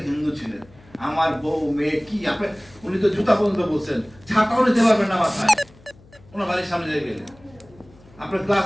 হিন্দু ছিলেন। আমার বউ মেয়ে কি, আপনি উনি তো জুতা পর্যন্ত বলছেন, ছাতাও নিতে পারবেন না মাথায় ওনার বাড়ির সামনে দিয়ে গেলে। আপনি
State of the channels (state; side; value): noise; left; hum, 26 dB below the sound